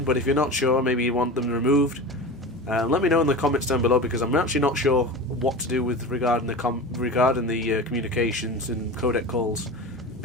But if you're not sure, maybe you want them removed, let me know in the comments down below, because I'm actually not sure what to do with regarding the communications and codec calls,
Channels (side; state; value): both; normal; correlation 0.30